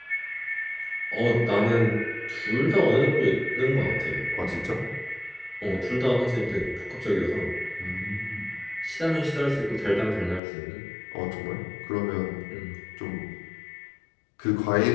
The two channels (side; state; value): right; drops out; at 10.4 s